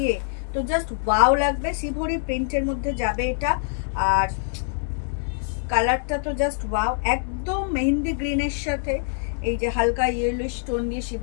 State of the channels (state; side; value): silent; right; digital silence